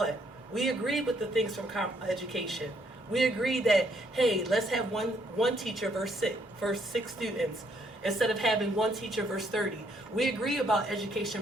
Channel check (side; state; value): both; normal; correlation 0.70